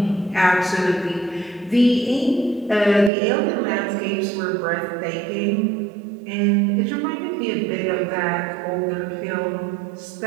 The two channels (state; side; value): drops out; left; at 3.1 s